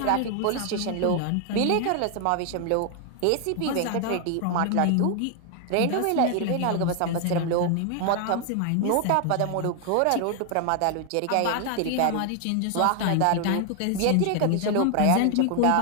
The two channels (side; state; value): both; different; correlation 0.00